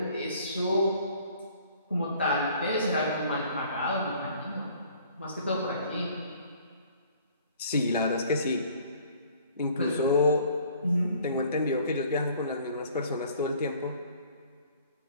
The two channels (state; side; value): inverted; both; correlation -0.55